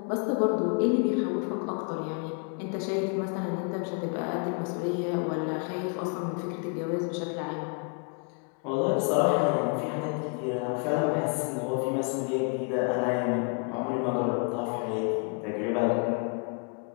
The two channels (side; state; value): right; quieter; 38.9 dB